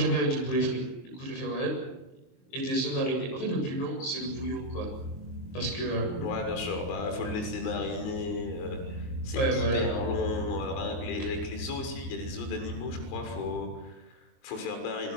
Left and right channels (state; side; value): late; right; 23 ms